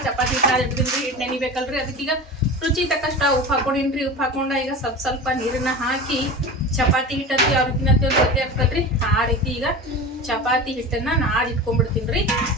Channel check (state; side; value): normal; both; correlation 0.31